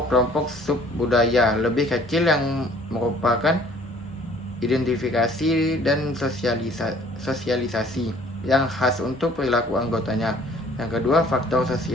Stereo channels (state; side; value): normal; both; correlation 0.55